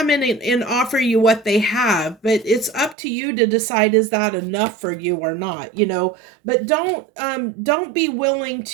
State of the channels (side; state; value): left; drops out; at 3.0 s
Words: in and offer you what they have, but it's up to you to decide, is that enough for you or not. But don't be willing